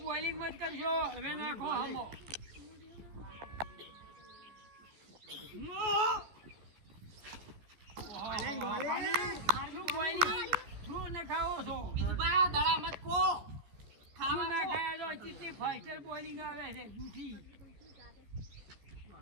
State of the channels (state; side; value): late; left; 14 ms